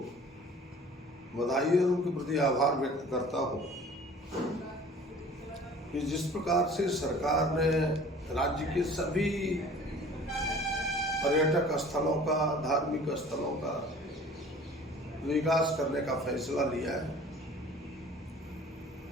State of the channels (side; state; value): both; normal; correlation 0.47